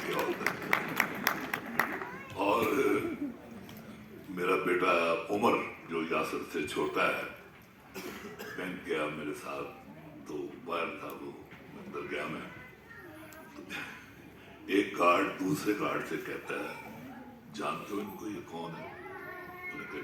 کیا ہوتا ہے. اور میرا بیٹا عمر جو یاسر سے چھوٹا ہے, بینک گیا میرے ساتھ تو باہر تھا, وہ اندر گیا میں, ایک گارڈ دوسرے گارڈ سے کہتا ہے, جانتے ہو ان کو یہ کون ہے؟ انہوں نے کہا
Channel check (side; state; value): both; identical; correlation 1.00